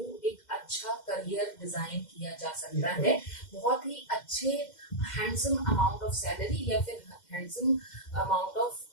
एक अच्छा करियर डिजाइन किया जा सकता है, बहुत ही अच्छे हैंडसम अमाउंट ऑफ सैलरी या फिर हैंडसम अमाउंट ऑफ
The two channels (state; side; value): late; right; 2.1 ms